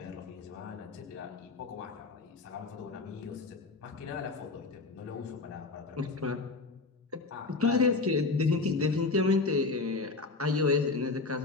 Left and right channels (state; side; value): quieter; right; 3.8 dB